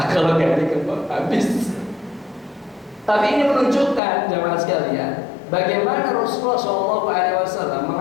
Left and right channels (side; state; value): right; drops out; at 4.0 s